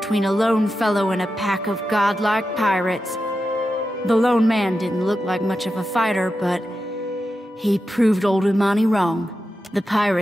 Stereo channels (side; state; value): both; normal; correlation 0.90